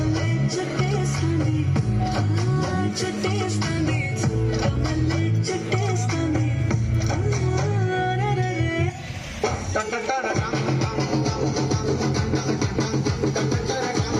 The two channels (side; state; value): both; identical; correlation 1.00